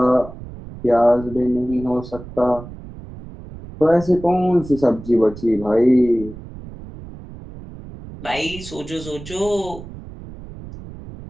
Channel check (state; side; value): noise; right; rumble, 14 dB below the sound